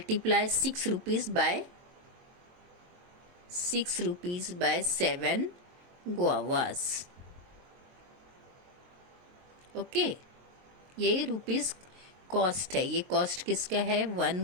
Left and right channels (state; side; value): late; left; 23 ms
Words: 6 rupees by 7 guavas. Okay, ये रुपीज़ कॉस्ट है। ये कॉस्ट किसका है?